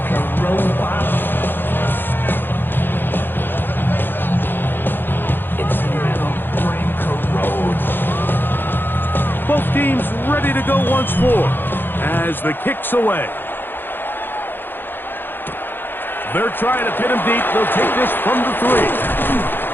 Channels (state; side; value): late; right; 0.098 ms